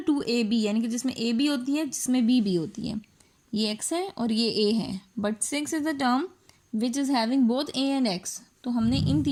2ab, यानी कि जिसमें a भी होती है जिसमें b भी होती है। ये x है और ये a है, but 6 is the term which is having both a and x। तो हमने इन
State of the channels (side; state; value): both; identical; correlation 1.00